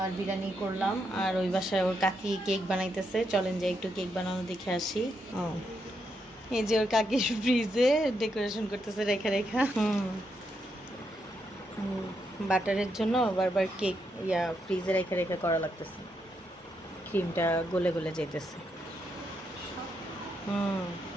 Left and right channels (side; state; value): both; normal; correlation 0.81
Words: আর বিরিয়ানি করলাম, আর ওই বাসায় ওর কাকি কেক বানাইতেছে। চলেন যে একটু কেক বানানো দেখে আসি। এই যে ওর কাকি ফ্রিজে ডেকোরেশন করতেছে রেখা রেখা। বাটারের জন্য বারবার কেক ফ্রিজে রেখে রেখে করা লাগতেছে, ক্রিমটা গলে গলে যেতেছে।